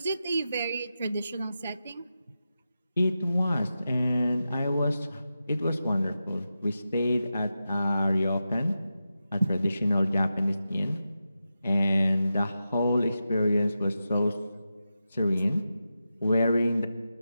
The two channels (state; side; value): inverted; both; correlation -0.90